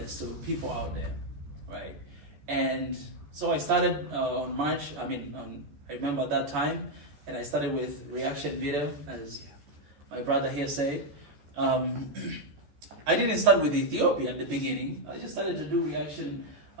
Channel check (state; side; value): late; left; 14 ms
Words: to people out there, right? And so I started on March. I remember at that time, and I started with reaction video, as my brother here said. I didn't start with Ethiopia in the beginning. I just started to do reaction